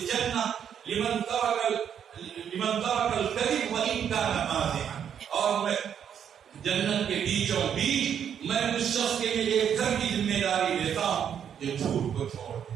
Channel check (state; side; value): quieter; left; 8.6 dB